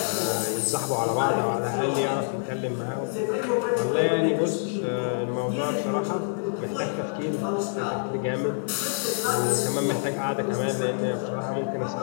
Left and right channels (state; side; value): silent; right; 60 dB below the other